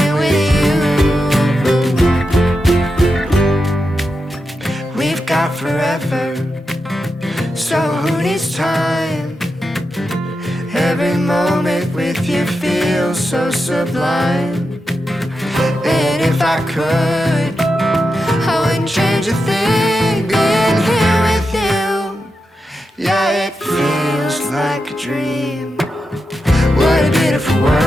with you. We've got forever, so who needs time? Every moment with you feels so sublime. And if I could, I wouldn't change a thing being here with you. Yeah, it feels like a dream. What a beautiful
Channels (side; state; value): both; normal; correlation 0.88